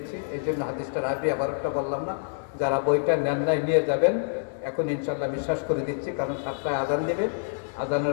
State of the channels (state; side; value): silent; right; digital silence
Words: এই জন্য হাদিসটার আগে আবার একটা বললাম না। যারা বইটা নেন নাই নিয়ে যাবেন, এখন ইনশাল্লাহ বিশ্বাস করে দিচ্ছি, কারণ 7টায় আজান দেবে।